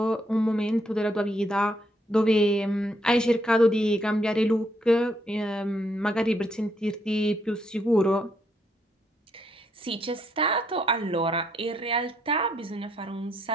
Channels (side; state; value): both; normal; correlation 0.74